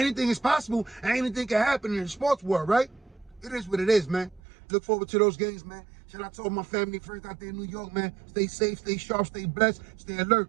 is possible and anything can happen in the sports world, right? It is what it is, man. Look forward to those games, man. Shout out to all my family, friends out there in New York, man. Stay safe, stay sharp, stay blessed, stay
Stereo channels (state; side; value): drops out; left; at 4.4 s